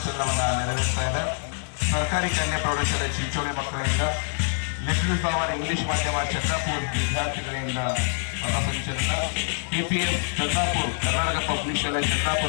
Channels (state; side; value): silent; right; 61 dB below the other